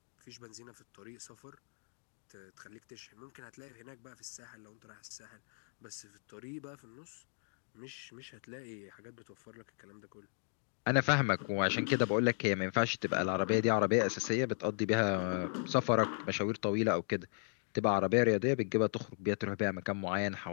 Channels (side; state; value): right; silent; 54 dB below the other